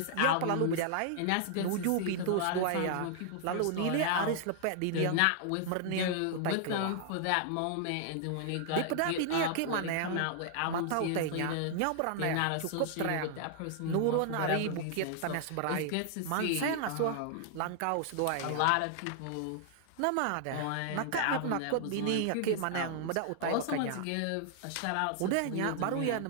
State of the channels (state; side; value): different; both; correlation 0.00